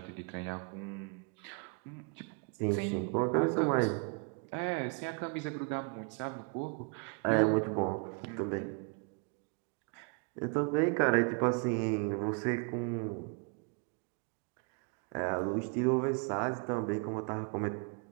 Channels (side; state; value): left; quieter; 35.4 dB